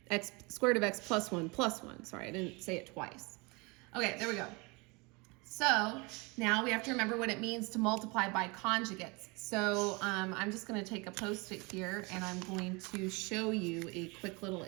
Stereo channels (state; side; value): quieter; left; 27.6 dB